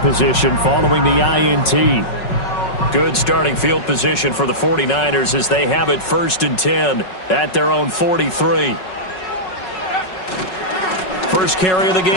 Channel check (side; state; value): right; late; 5.4 ms